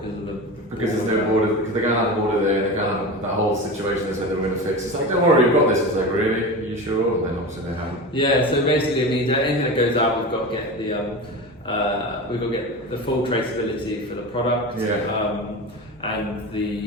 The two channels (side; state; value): both; normal; correlation 0.27